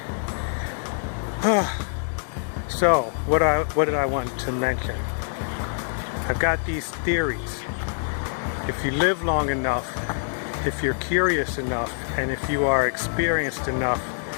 So what did I want to mention? I've got these theories. If you live long enough, if you're curious enough, and if you are experienced enough,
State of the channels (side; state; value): right; silent; digital silence